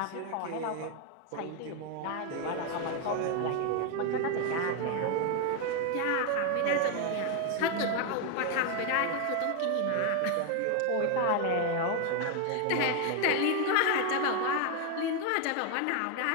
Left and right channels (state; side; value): different; both; correlation 0.01